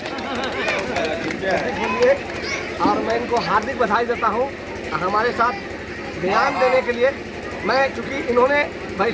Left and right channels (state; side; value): identical; both; correlation 1.00